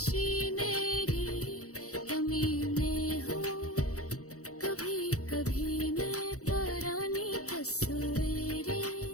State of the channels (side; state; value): right; late; 0.65 ms